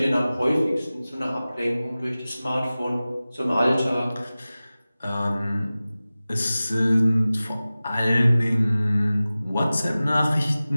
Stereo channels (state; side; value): inverted; both; correlation -0.97